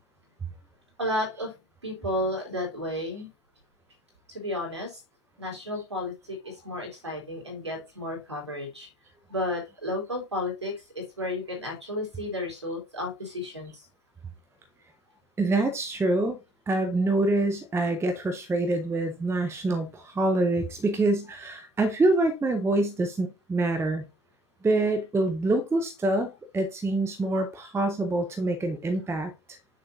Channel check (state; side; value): normal; both; correlation 0.62